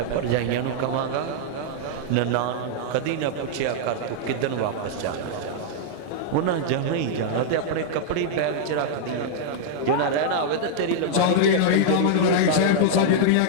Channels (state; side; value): different; both; correlation -0.01